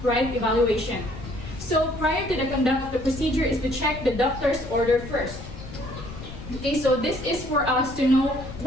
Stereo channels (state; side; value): noise; left; rumble, 12 dB below the sound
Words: right evaluation. So prior to the conduct of the procedure is to check the doctor's order first. Okay, so this is for us to know